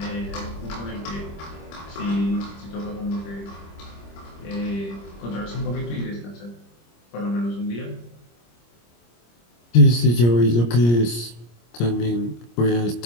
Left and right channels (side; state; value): right; late; 25 ms